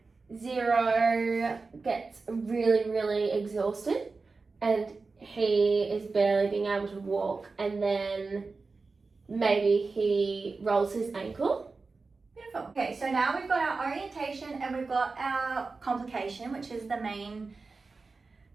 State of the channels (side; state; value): left; quieter; 4.1 dB